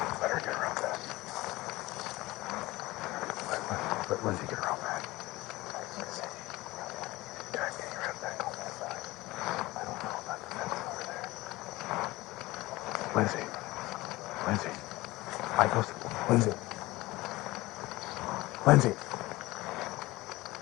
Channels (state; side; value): quieter; right; 19.9 dB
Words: Let her get around that. Let Lindsay get around that. Guys, get your head back on that side. I don't know about the fence over there. Lindsay. Lindsay. Igo's. Lindsay. Lindsay.